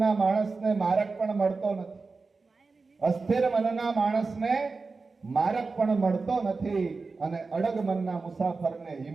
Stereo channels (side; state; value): left; quieter; 4.1 dB